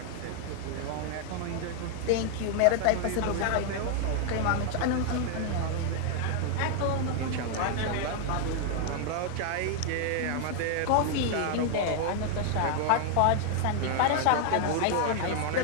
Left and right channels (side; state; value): both; different; correlation 0.00